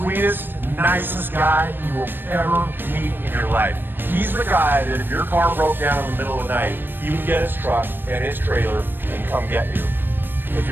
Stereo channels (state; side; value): late; left; 0.095 ms